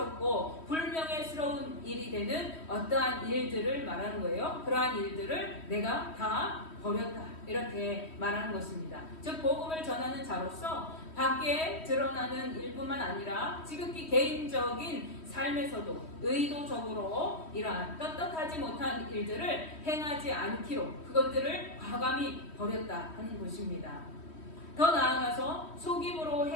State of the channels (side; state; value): right; late; 3.1 ms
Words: 불명예스러운 일이 되는 어떠한 일들을 말하는 거예요. 그러한 일들을 내가 다 버렸다 이렇게 말하는 것입니다. 즉 복음을 전하는 자로서 밖에 드러나는 일뿐만 아니라 지극히 개인적인 삶에서도 의도적으로 이러한 떳떳하지 못한 일들을 행하지 않기로 그것들을 과감히 버렸다 하는 것입니다. 더 나아가서 속임으로